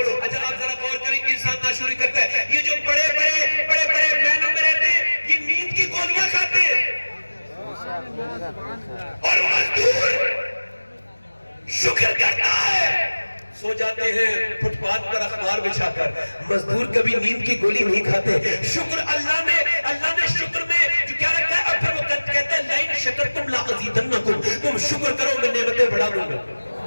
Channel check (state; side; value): inverted; both; correlation -1.00